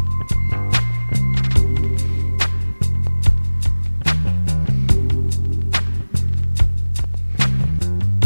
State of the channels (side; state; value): both; inverted; correlation -1.00